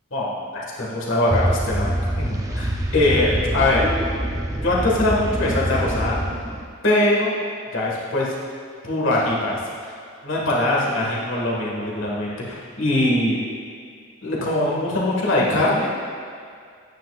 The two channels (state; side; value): normal; both; correlation 0.37